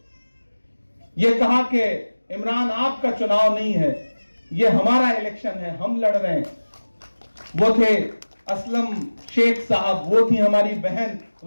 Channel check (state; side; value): inverted; both; correlation -1.00